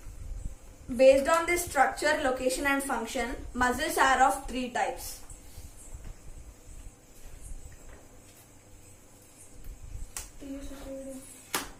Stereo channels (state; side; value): identical; both; correlation 1.00